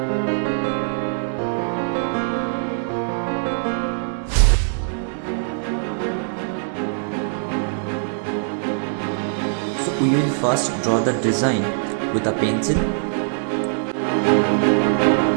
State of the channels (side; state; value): left; silent; digital silence